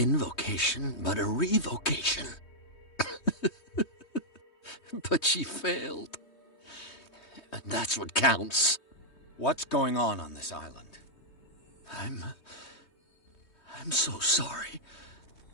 but a revocation. But she failed. And that's what counts. What's going on this island? I'm so sorry.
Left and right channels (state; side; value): late; right; 3.2 ms